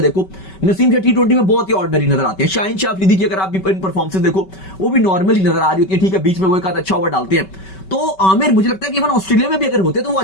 देखो, नसीम शाह T20 में बहुत ही ऑर्डिनरी नजर आते हैं। शाहीन शाह अफरीदी की अगर आप इन परफॉर्मेंस देखो, वो भी नॉर्मली नजर आ रही होती है, ठीक है, बीच में वो एक आध अच्छा ओवर डालते हैं। तो आमिर मुझे लगता है कि इवन ऑस्ट्रेलिया में भी अगर होते तो वो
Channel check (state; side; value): late; right; 5.2 ms